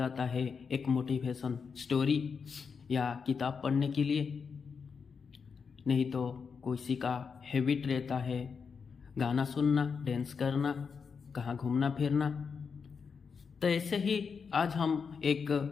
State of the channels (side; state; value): right; quieter; 5.8 dB